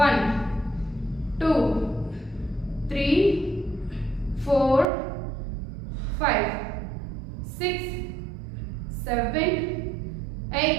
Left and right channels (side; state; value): left; drops out; at 4.9 s